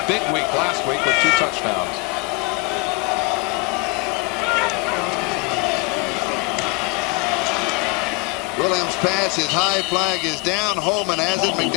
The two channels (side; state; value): right; quieter; 25.1 dB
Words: big week last week with 2 touchdowns. Williams' pass is high. Flag is down. Holman has it.